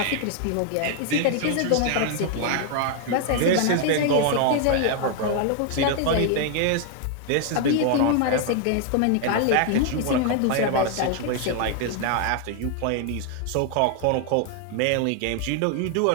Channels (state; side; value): different; both; correlation 0.00